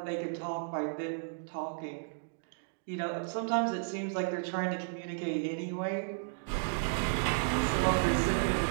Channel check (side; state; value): left; silent; digital silence